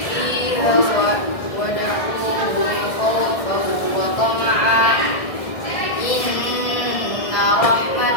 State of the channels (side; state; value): right; late; 1.6 ms